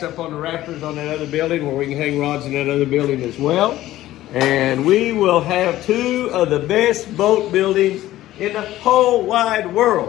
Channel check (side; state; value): right; quieter; 14.9 dB